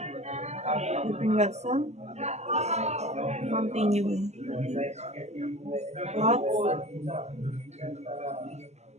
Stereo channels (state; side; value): late; left; 0.33 ms